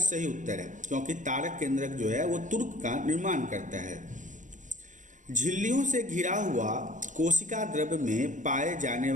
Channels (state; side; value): late; left; 0.37 ms